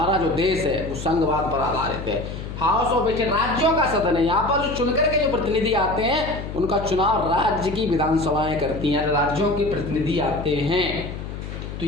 जो देश है वो संघवाद पर आधारित है। हाउस ऑफ स्टेट राज्यों का सदन है, यहाँ पर जो चुनकर के जो प्रतिनिधि आते हैं उनका चुनाव राज्य की विधानसभाएं करती हैं, राज्यों के प्रतिनिधि आते हैं। तो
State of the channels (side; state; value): left; noise; hum, 8 dB below the sound